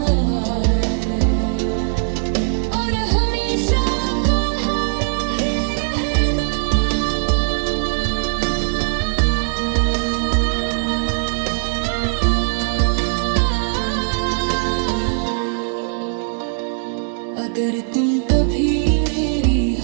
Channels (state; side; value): silent; left; digital silence